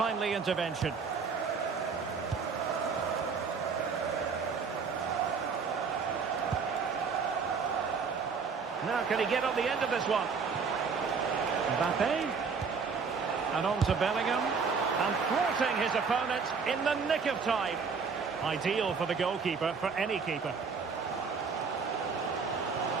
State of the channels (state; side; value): quieter; left; 5.4 dB